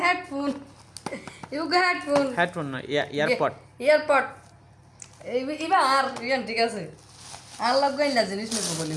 headphone you go headphone headphone না এয়ারপড এয়ারপড ইবা আর ইয়ান ঠিক আছে আর লাগ গাইলা জিনিস নেব বলি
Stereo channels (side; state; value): both; identical; correlation 1.00